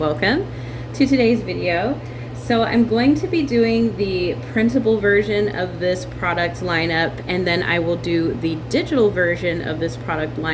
to today's video. So I'm going to be doing the printable version of this product lineup, and then I will do the digital version of this product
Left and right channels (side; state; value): both; identical; correlation 1.00